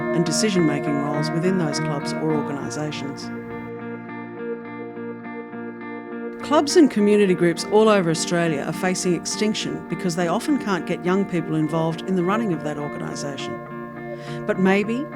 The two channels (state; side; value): identical; both; correlation 1.00